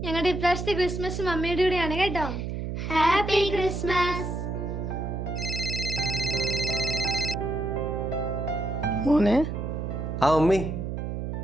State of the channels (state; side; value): noise; right; hum, 4 dB below the sound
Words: ഞങ്ങളുടെ ഇപ്രാവശ്യത്തെ ക്രിസ്മസ് മമ്മിയുടെ കൂടെയാണ് കേട്ടോ. Happy Christmas. മോനെ. ആ മമ്മി,